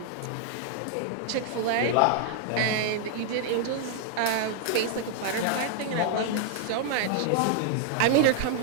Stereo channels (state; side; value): different; both; correlation -0.01